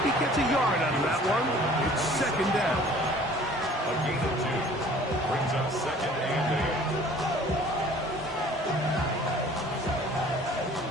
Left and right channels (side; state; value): both; normal; correlation 0.51